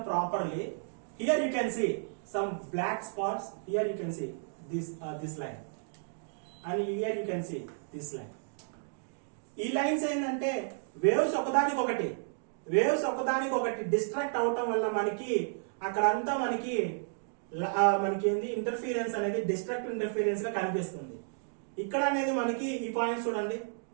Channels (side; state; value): left; silent; digital silence